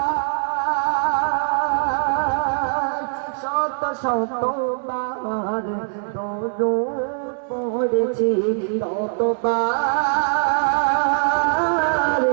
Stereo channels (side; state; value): left; silent; digital silence